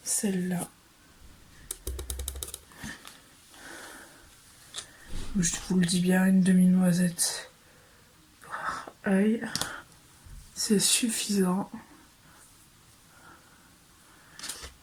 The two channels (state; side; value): identical; both; correlation 1.00